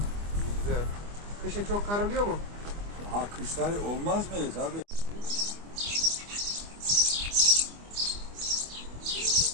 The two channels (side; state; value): left; late; 25 ms